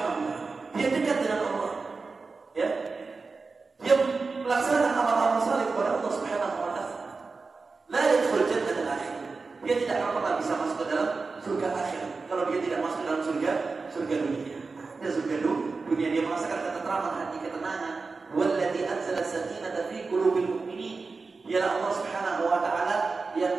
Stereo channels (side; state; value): left; quieter; 4.2 dB